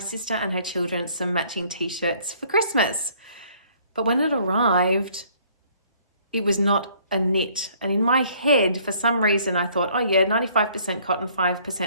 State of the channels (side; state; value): both; inverted; correlation -0.60